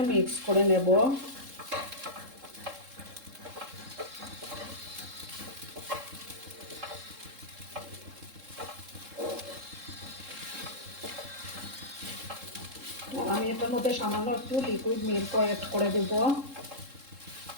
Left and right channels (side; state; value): left; late; 3.7 ms